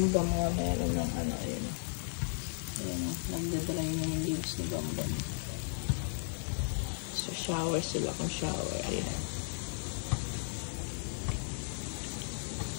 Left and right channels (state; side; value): silent; right; digital silence